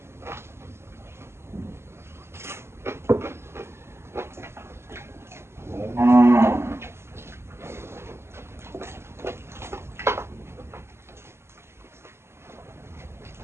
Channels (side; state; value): left; late; 0.12 ms